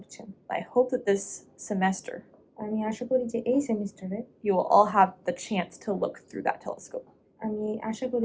I hope that this semester আমি আশা করি যে এই সেমিস্টারে you will all have the chance to look through that telescope. আমি আশা করি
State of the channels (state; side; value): identical; both; correlation 1.00